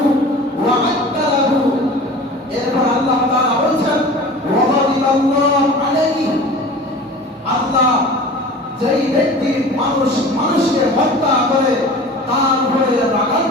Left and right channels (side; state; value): both; normal; correlation 0.39